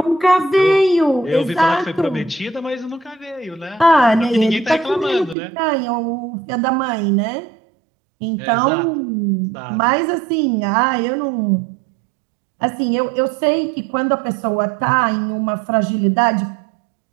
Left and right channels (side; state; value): left; drops out; at 5.4 s